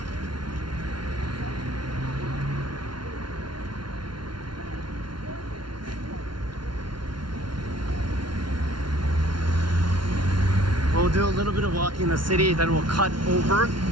We'll do a little bit of walking in the city, then we'll cut over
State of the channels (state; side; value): late; left; 0.72 ms